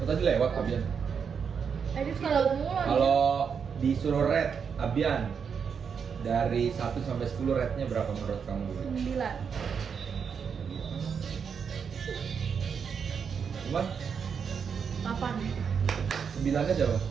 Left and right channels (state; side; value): quieter; left; 6.6 dB